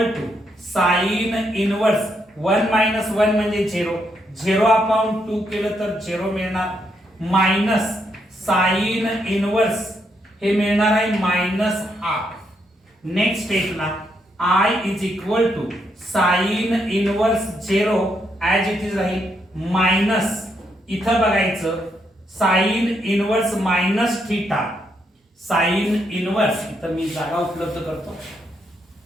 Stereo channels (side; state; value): both; normal; correlation 0.77